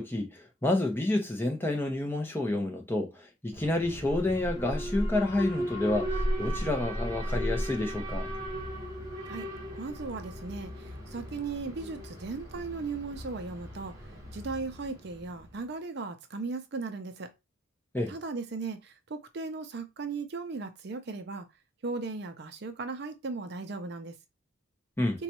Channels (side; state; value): both; normal; correlation 0.71